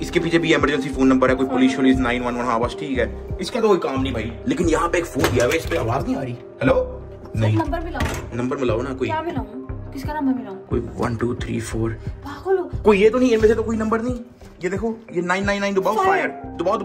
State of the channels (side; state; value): both; identical; correlation 1.00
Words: इसके पीछे भी इमरजेंसी फोन नंबर है। कोई पुलिस 911। हाँ बस ठीक है। इसका तो कोई काम नहीं भाई। लेकिन यहाँ पे एक फोन दिया हुआ है, इस पे आवाज नहीं आ रही। हेलो नहीं, नंबर मिलाओ ना। कोई किसका नंबर मिलाऊं? कोई 1 2 3 4 पागल हो? कोई ये तो नहीं, इनमें से तो कोई नंबर नहीं। ये देखो, ये 999 दबाओ। फायर दबाओ